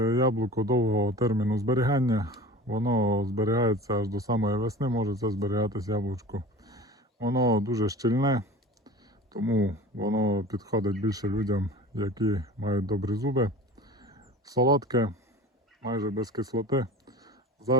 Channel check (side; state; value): both; normal; correlation 0.38